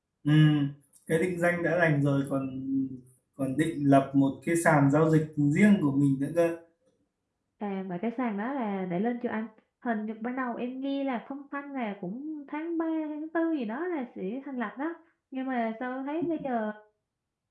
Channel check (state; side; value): identical; both; correlation 1.00